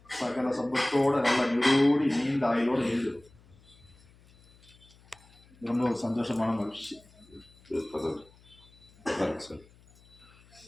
சகல சம்பத்தோட நல்ல நிரோடி நீண்ட ஆயுளோட எழுது ரொம்ப சந்தோஷமான மகிழ்ச்சி.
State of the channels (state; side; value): noise; left; hum, 27 dB below the sound